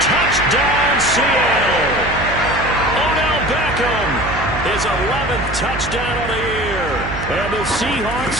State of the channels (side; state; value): right; noise; hum, 8 dB below the sound